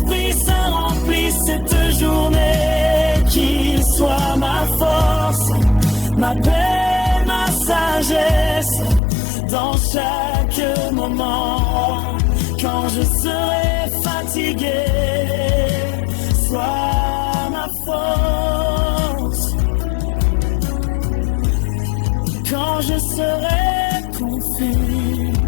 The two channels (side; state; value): right; drops out; at 9.0 s